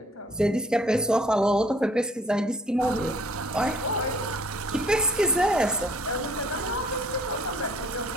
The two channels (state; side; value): normal; both; correlation 0.59